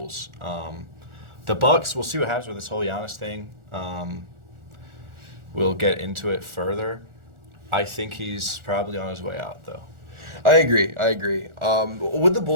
The Bucks, we'll see what happens with this whole Giannis thing. We'll get into it further. I think he's probably on his way out, though. I agree. With the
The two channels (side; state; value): left; late; 1.4 ms